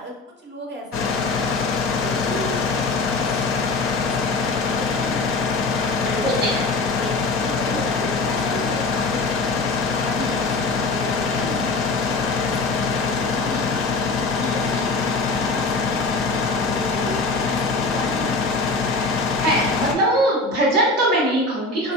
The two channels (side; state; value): right; quieter; 3.0 dB